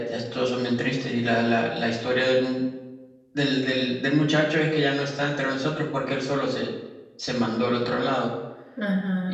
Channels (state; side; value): identical; both; correlation 1.00